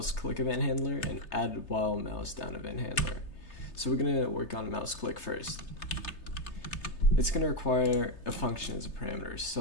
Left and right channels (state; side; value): late; right; 3.3 ms